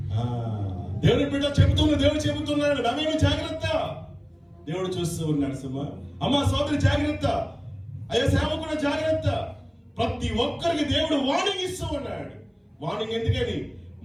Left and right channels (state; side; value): identical; both; correlation 1.00